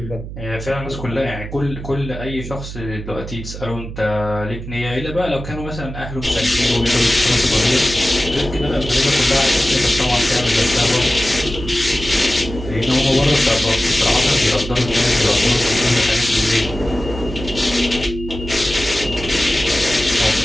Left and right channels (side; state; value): right; noise; hum, 10 dB below the sound